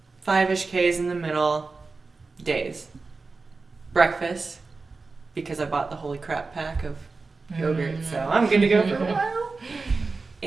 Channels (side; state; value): left; quieter; 4.0 dB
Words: 5-ish Ks in the middle days. Breakfast, because I bought the Holy Crap pack of yogurt, so I'm good to go for a while.